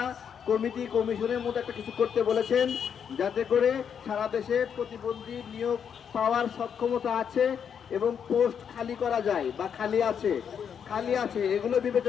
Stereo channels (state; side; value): quieter; right; 7.7 dB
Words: কমিশনের মতো একটা কিছু করতে বলেছেন, যাতে করে সারা দেশে প্রতিবন্ধী নিয়োগ পাওয়ার সক্ষমতা আছে এবং পোস্ট খালি করা যায় বা খালি আছে এগুলো